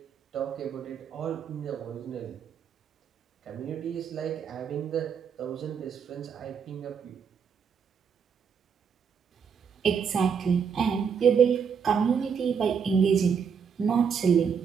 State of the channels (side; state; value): left; quieter; 6.7 dB